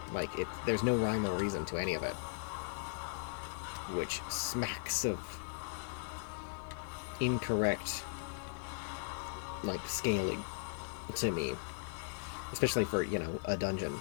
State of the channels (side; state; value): right; silent; 52 dB below the other